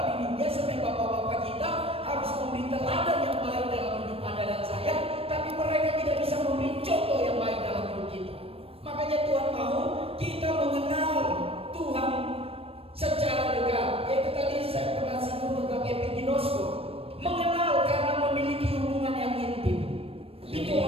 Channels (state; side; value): late; left; 0.28 ms